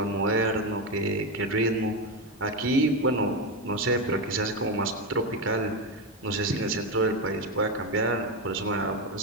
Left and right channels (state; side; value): normal; both; correlation 0.12